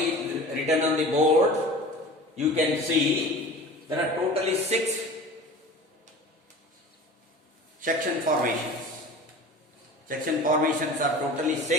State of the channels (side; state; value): both; normal; correlation 0.39